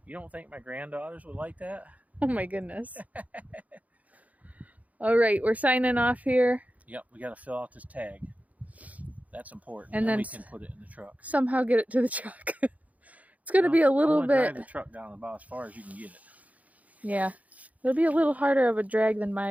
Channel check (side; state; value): left; late; 0.072 ms